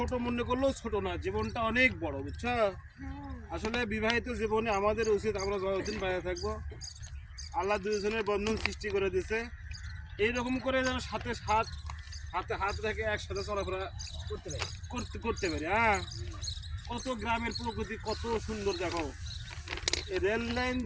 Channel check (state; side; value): identical; both; correlation 1.00